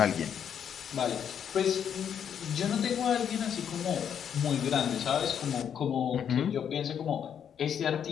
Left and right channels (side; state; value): right; quieter; 8.5 dB